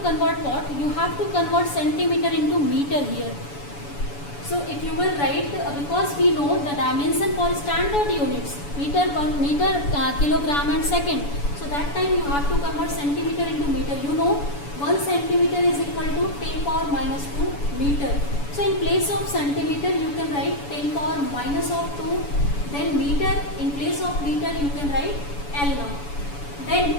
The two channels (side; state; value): right; late; 7.0 ms